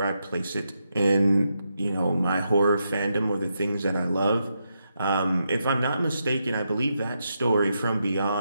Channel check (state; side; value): inverted; both; correlation -0.83